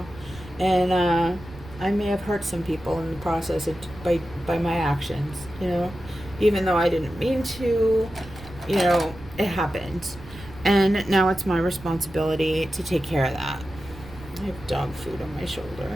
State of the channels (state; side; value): noise; right; rumble, 17 dB below the sound